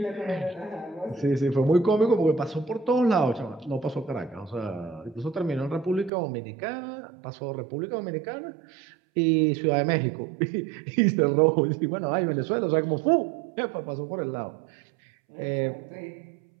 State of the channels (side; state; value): left; drops out; at 6.1 s